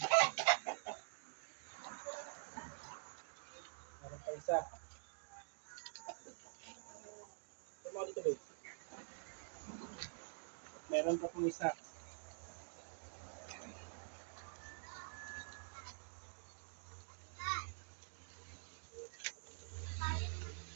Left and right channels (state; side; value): silent; left; digital silence